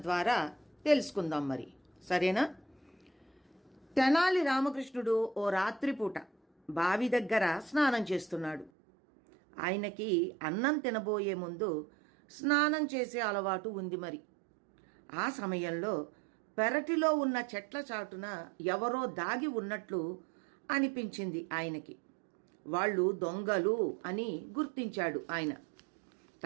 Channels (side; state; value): left; drops out; at 8.7 s